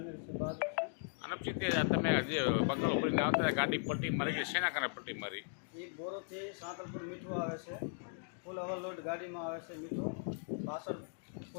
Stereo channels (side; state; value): right; silent; digital silence